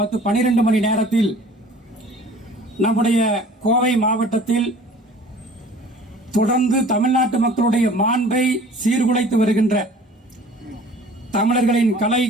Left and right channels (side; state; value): both; normal; correlation 0.48